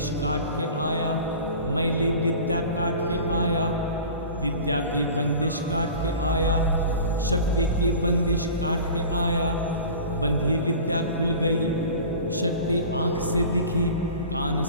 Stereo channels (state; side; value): inverted; both; correlation -0.39